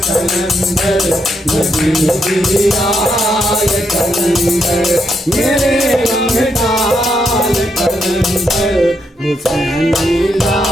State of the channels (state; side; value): normal; both; correlation 0.79